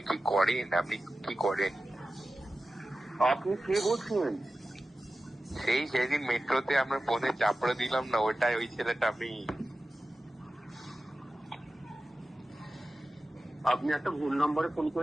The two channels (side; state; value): both; normal; correlation 0.94